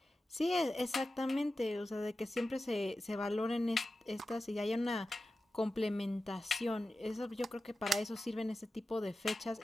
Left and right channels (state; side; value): normal; both; correlation 0.93